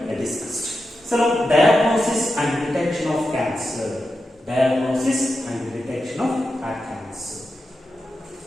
discussed. So now diagnosis and detection of cancer. Diagnosis and detection of cancer.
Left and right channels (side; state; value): both; normal; correlation 0.89